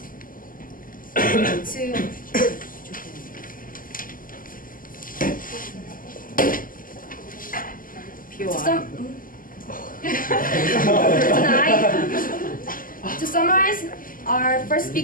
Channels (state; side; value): late; right; 0.41 ms